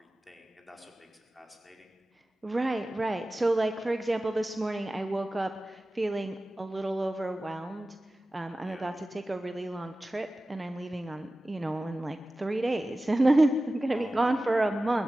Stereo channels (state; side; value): normal; both; correlation 0.96